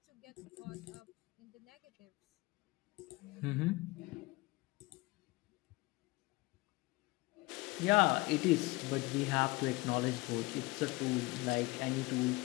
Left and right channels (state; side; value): quieter; right; 22.8 dB